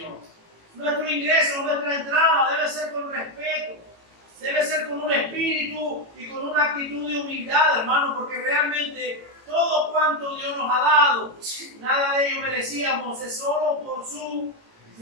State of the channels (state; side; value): late; left; 18 ms